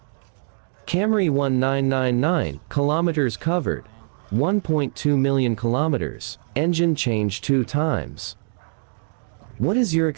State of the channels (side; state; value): left; silent; digital silence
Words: Camry 1999, kilometers covered, 1.2 million kilometers, engine changed 2 times. What is your